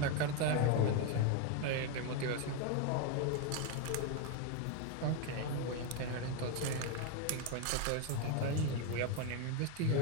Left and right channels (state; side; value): different; both; correlation 0.02